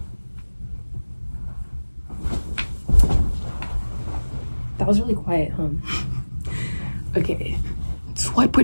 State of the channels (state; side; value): inverted; both; correlation -1.00